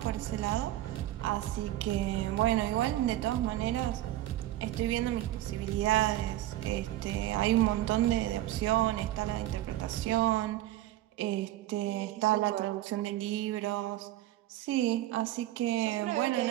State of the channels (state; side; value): quieter; left; 14.5 dB